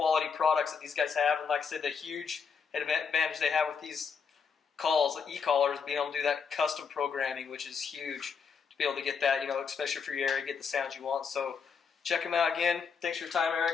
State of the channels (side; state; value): right; quieter; 6.1 dB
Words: products that these guys have. And like I said, the huge advantage they have with these calls, the e-callers, being able to do that custom programming, which is huge to be able to get that, especially for your area, get the sounds you want. So check them out again. Thanks for your time,